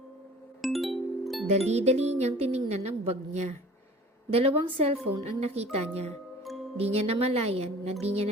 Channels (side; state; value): both; normal; correlation 0.46